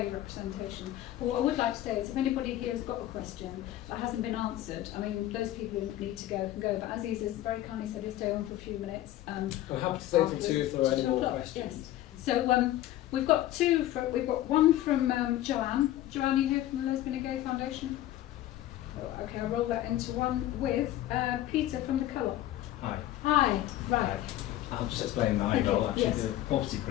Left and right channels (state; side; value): quieter; right; 14.0 dB